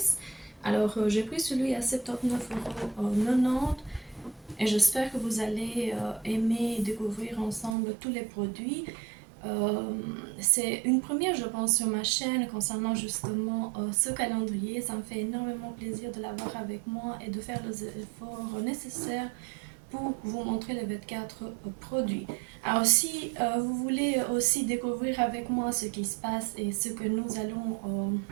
Alors, j'ai pris celui à 79,90 € et j'espère que vous allez aimer découvrir ensemble tous les produits. C'est une première, je pense, sur ma chaîne concernant justement ce calendrier. Ça me fait énormément plaisir de l'avoir avec moi et de faire les efforts nécessaires pour vous montrer les 24 produits. Alors si vous voulez aussi découvrir avec moi ce qui se passe et ce que nous allons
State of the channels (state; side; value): drops out; left; at 7.8 s